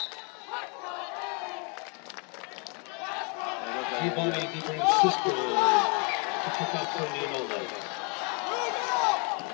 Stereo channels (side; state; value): right; quieter; 35.1 dB